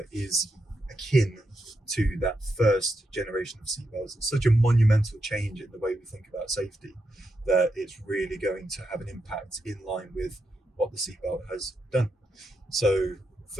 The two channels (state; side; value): normal; both; correlation 0.84